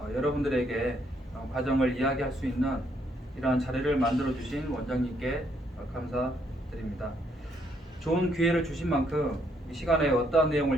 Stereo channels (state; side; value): normal; both; correlation 0.72